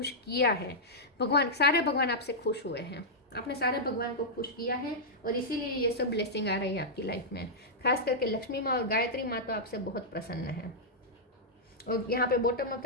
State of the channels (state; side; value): normal; both; correlation -0.09